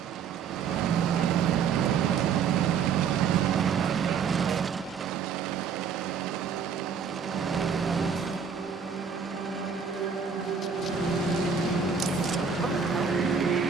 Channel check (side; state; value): left; quieter; 6.4 dB